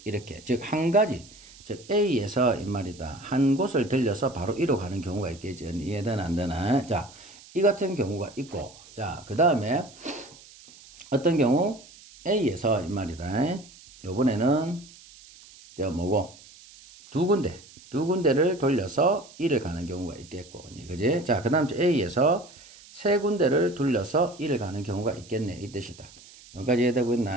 이렇게 즉 한 가지 즉 A에서 이 말이다. 한 곳을 들려서 바로 E로 가는 경우가 있겠지. 이해되나 안 되나? 자, 이 같은 경우가 있고 자, 그 다음에 어떤 경우 A에서 이 말이다. 요번에는 저 뭐고 두 군데를 돌려서 E를 가는 경우가 있겠고 그지? 자, 그 다음 A에서 세 군데를 돌려서 E를 가는 경우가 있겠네 이 뜻이다. 여기까지 이해되고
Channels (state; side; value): noise; right; hiss, 22 dB below the sound